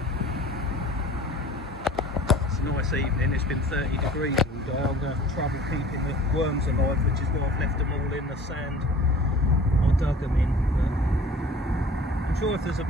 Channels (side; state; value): both; normal; correlation 0.46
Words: It's a nice evening. It's been 30 degrees all day. I'm going to have trouble keeping the worms alive, which is why I've left them all in the sand I dug them in. But I'm sure if there's a